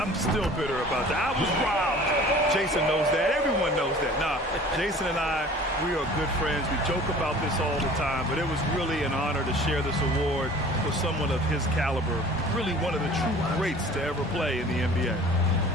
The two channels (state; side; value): normal; both; correlation 0.46